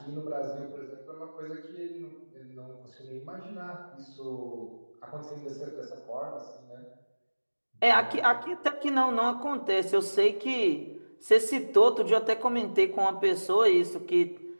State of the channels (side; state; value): both; inverted; correlation -1.00